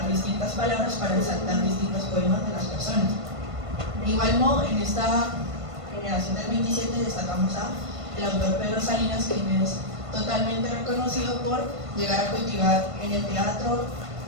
distintas palabras para resaltar distintos poemas de las personas. De igual modo, en esta generación del 27 destacamos a el autor Pedro Salinas, quien es totalmente reconocido por llegar a cultivar en el teatro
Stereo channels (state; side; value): late; left; 1.5 ms